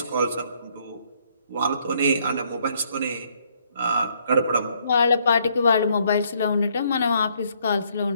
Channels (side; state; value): both; inverted; correlation -0.67